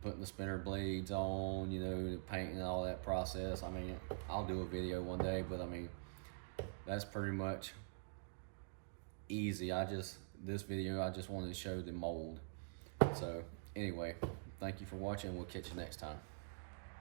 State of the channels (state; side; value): silent; left; digital silence